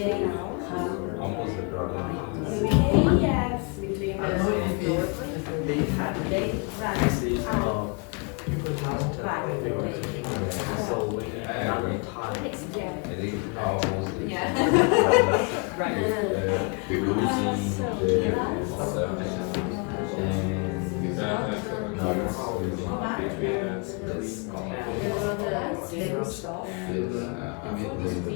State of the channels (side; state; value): right; quieter; 33.9 dB